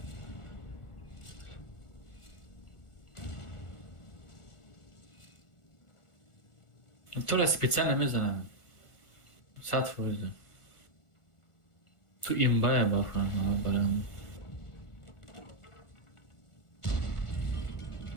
تو را специально میزنم 100%. تو این باید بفرم برم.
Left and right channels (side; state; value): right; late; 1.4 ms